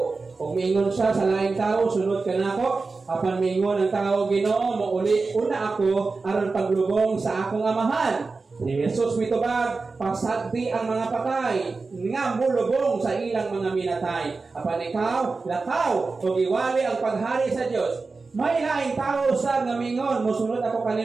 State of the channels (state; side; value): quieter; left; 4.0 dB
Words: Kung mingon siya sa laing tao, sunod ka na ako. Apan mingon ang tao, Ginoo, mauli una ako aron paglubong sa akong amahan. Si Jesus mitubag, pasagdi ang mga patay, nga mulubong sa ilang mga minatay. Apan ikaw, lakaw, o iwali ang paghari sa Diyos. May laing tao sa ngamingon, musunod ako